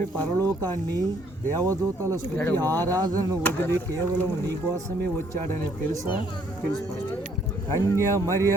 పరలోకాన్ని, దేవదూతల స్తుతి ఆరాధనను వదిలి కేవలం నీ కోసమే వచ్చాడని తెలుసా? కన్య మరియ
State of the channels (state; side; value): normal; both; correlation 0.65